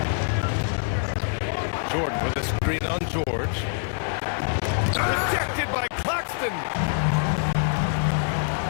Jordan with a screen on George. Rejected by Claxton.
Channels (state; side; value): silent; right; digital silence